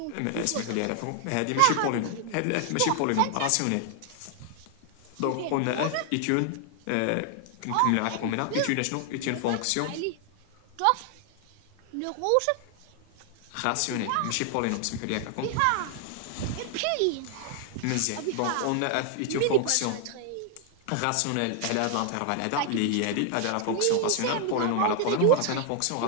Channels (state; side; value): different; both; correlation 0.00